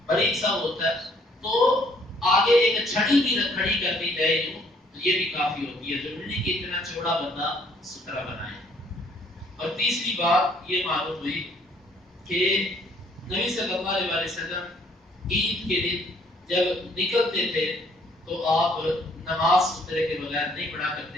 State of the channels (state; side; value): normal; both; correlation 0.63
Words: باریک سا ہوتا ہے تو آگے ایک چھڑی بھی کھڑی کر دی جائے تو یہ بھی کافی ہوتی ہے، ضروری نہیں کہ اتنا چوڑا بندہ سترہ بنائے. اور تیسری بات یہ معلوم ہوئی کہ نبی صلی اللہ علیہ وسلم عید کے دن جب نکلتے تھے تو آپ نماز سترے کے بغیر نہیں پڑھا